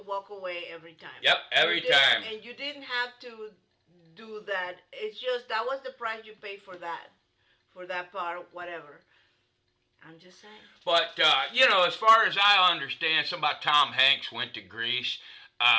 walk away every time. Yep, every time. And you didn't have to do that. It's just that was the price you paid for that part, whatever. I'm just saying. But, as far as I understand, something about Tom Hanks went to Greece.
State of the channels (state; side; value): identical; both; correlation 1.00